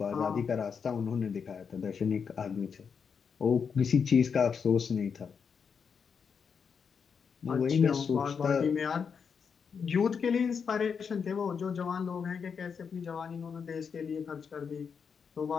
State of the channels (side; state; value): right; quieter; 6.3 dB